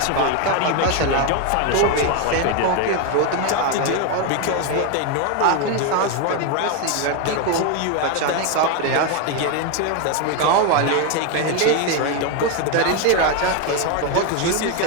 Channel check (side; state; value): both; different; correlation 0.01